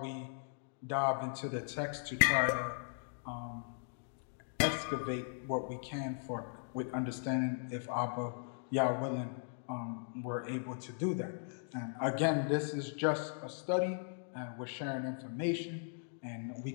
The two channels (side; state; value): right; silent; digital silence